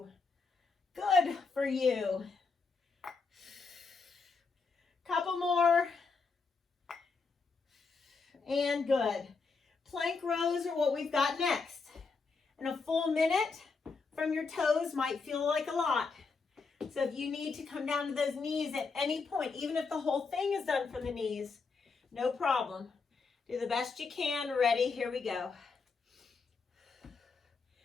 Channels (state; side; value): quieter; right; 4.6 dB